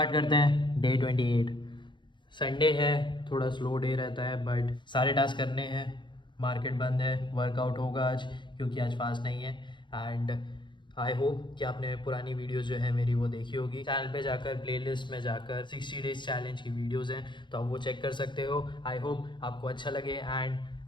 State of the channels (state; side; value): late; right; 0.23 ms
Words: करते हैं डे 28। संडे है, थोड़ा स्लो डे रहता है बट सारे टास्क करने हैं। मार्केट बंद है, वर्कआउट होगा आज क्योंकि आज फास्ट नहीं है। एंड आई होप कि आपने पुरानी वीडियोस जो है मेरी वो देखी होगी। चैनल पे जाकर प्लेलिस्ट में जाकर 60 डेज चैलेंज की वीडियोस हैं, तो आप वो चेक कर सकते हो। आई होप आपको अच्छा लगे एंड